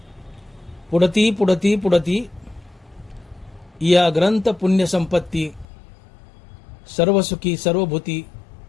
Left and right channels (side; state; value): right; drops out; at 5.7 s